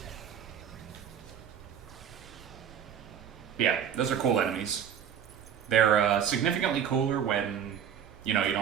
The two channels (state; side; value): quieter; left; 8.7 dB